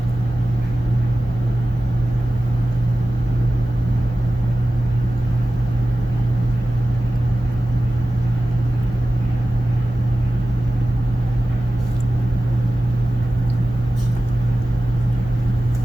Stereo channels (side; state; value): both; normal; correlation 0.95